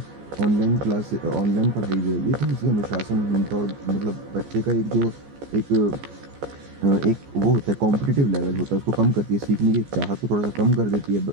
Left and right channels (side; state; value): left; late; 14 ms